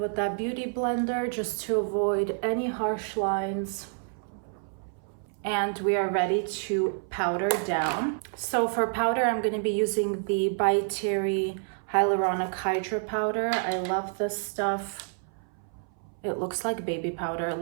that beauty blender, just to avoid any harsh lines. And we are ready to powder down. So for powder, I'm going to be using the ByTerry Hyaluronic Hydra powder. I love this stuff. It looks like baby powder a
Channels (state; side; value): silent; left; 59 dB below the other